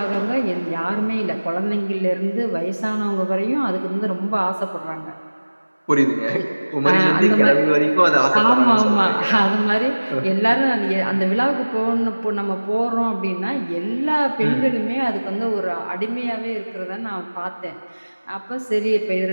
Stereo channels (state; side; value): inverted; both; correlation -1.00